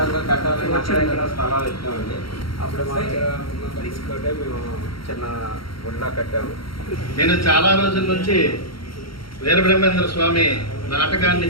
కట్టాలని అక్కడ స్థలాలు ఇచ్చామండి. అప్పుడు మా తీసుకుంటే మేము చిన్న గుడిలా కట్టాము. నేను చాలా రోజుల నుంచి వీరబ్రహ్మేంద్ర స్వామి నాటకాన్ని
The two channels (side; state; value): right; late; 0.74 ms